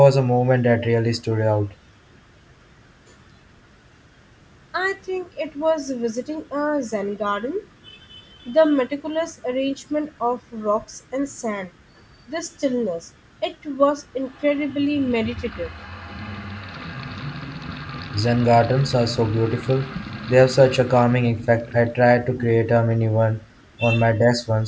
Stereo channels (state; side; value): identical; both; correlation 1.00